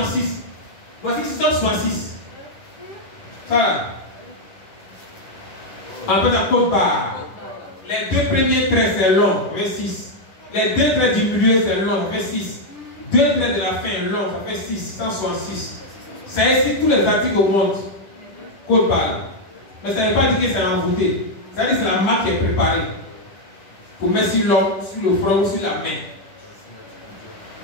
Voici 666. Ça là. En fait, la côte barre. Les 2 premiers traits, c'est long, ça fait 6. Les 2 traits du milieu, c'est long, ça fait 6. 2 traits de la fin, long, ça fait 6, 166. Ça inscrit tous les articles au monde. Côte barre. Mais ça ne veut pas dire que c'est envoûté. Ça veut dire que c'est la marque qui est préparée. Pour mettre sur l'homme, sur le front ou sur la main.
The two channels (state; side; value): late; right; 11 ms